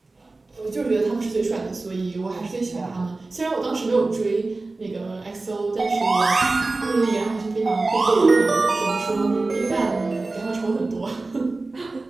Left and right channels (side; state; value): left; quieter; 3.4 dB